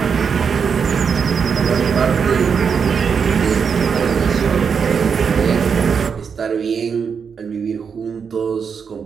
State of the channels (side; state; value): left; quieter; 6.4 dB